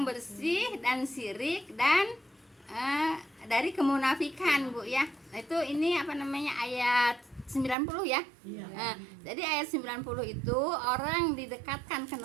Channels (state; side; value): drops out; left; at 7.8 s